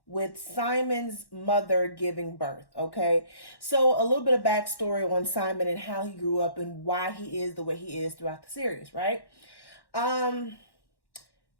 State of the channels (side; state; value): right; late; 1.1 ms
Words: with Simon's mother giving birth, okay? So, a little bit of backstory on Simon and how he grew up and why he is the way he is throughout the series, right? Um,